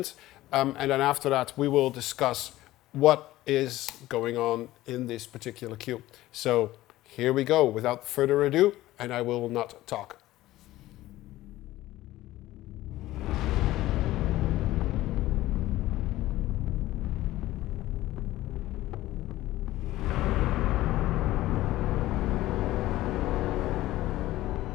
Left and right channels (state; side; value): quieter; right; 16.1 dB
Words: and then after that we will discuss what is going on in this particular cue. So here we go, without further ado, and I will not talk.